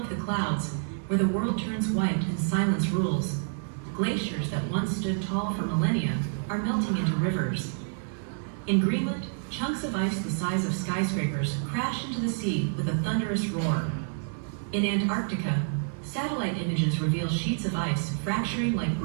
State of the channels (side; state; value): left; silent; 59 dB below the other